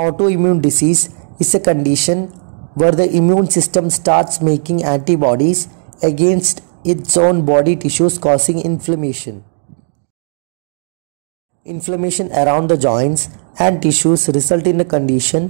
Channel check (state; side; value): silent; left; digital silence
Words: disease is a condition where the immune system starts making antibodies against its own body tissues causing inflammation. Inflammation around the joints and tissues result in a